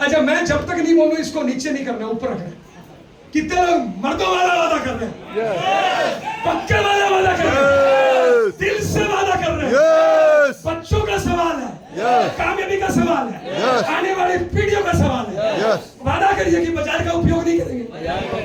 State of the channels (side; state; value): both; identical; correlation 1.00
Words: अच्छा, मैं जब तक नहीं बोलूं इसको नीचे नहीं करना, ऊपर रखना। कितने लोग मर्दों वाला वादा कर रहे हैं? पक्के वाला वादा कर रहे हैं, दिल से वादा कर रहे हैं। यस बच्चों का सवाल है, Yes. कामयाबी का सवाल है, Yes. आने वाली पीढ़ियों का सवाल है। Yes. वादा करिए कि बाजार का उपयोग नहीं करेंगे,